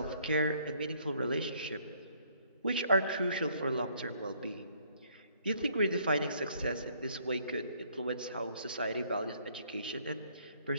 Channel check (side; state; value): both; inverted; correlation -0.64